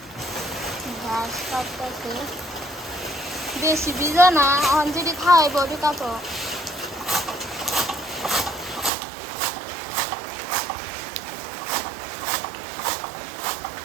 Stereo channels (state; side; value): drops out; left; at 8.9 s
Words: ঘাস কাটতেছে বেশি ভিজা না অঞ্জলি খাওয়াইব ঠিক আছে